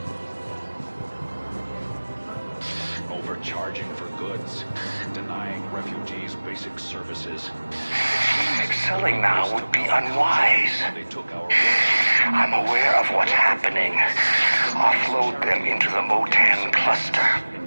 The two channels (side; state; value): both; inverted; correlation -1.00